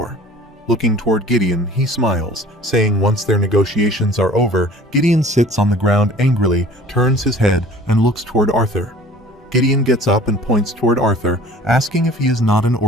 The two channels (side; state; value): both; normal; correlation 0.47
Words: Looking toward Gideon, he smiles, saying once their negotiations are over, Gideon sits on the ground angrily, turns his head, and looks toward Arthur. Gideon gets up and points toward Arthur, asking if he is not an